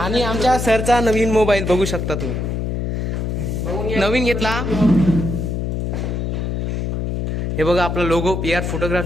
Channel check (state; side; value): noise; left; hum, 1 dB below the sound